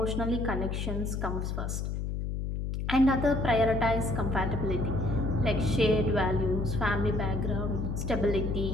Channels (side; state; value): left; noise; hum, 3 dB below the sound